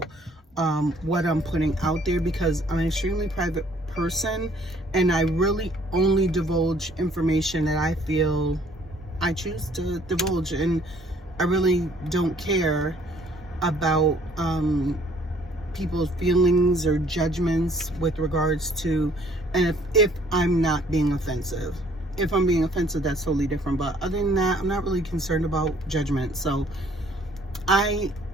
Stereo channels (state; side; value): normal; both; correlation 0.59